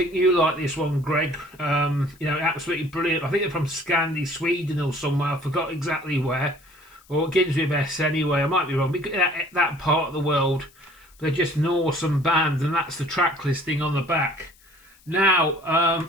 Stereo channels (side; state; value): left; noise; hiss, 29 dB below the sound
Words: you like this one, Greg. You know, absolutely brilliant. I think they're from Scandi, Sweden or somewhere. I forgot exactly where. Or it begins with S anyway. I might be wrong. That part of the world. They're just an awesome band, and that's the track listing on the back. Now,